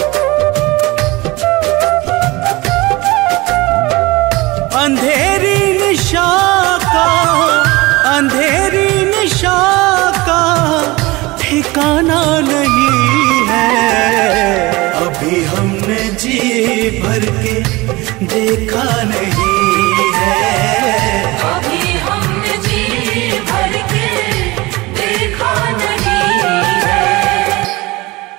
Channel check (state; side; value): quieter; left; 22.0 dB